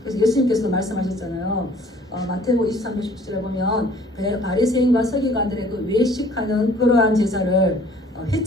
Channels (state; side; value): normal; both; correlation 0.55